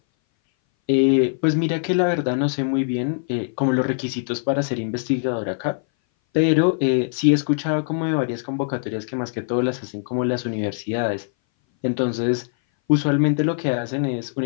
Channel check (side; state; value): right; silent; 59 dB below the other